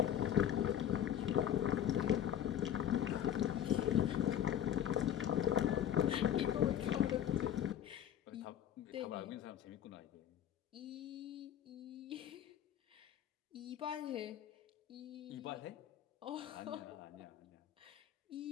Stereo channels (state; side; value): quieter; right; 10.3 dB